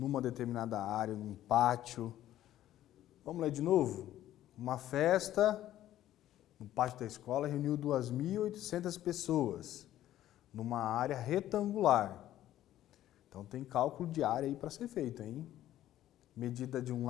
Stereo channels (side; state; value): right; quieter; 13.0 dB